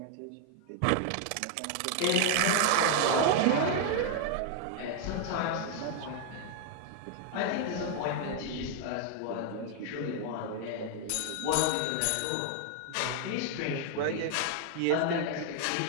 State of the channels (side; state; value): both; different; correlation 0.00